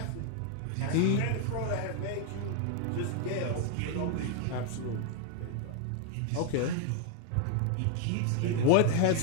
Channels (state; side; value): different; both; correlation 0.00